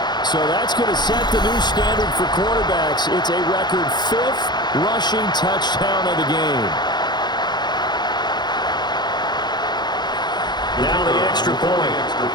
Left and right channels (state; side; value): late; right; 0.21 ms